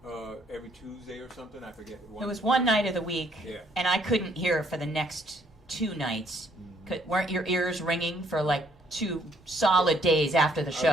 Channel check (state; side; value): normal; both; correlation 0.66